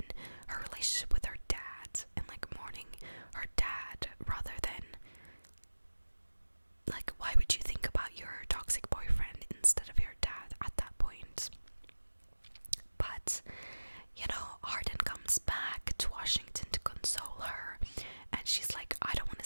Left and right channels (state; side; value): inverted; both; correlation -1.00